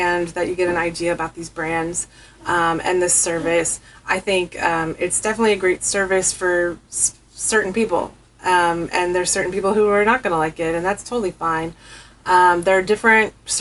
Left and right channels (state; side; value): identical; both; correlation 1.00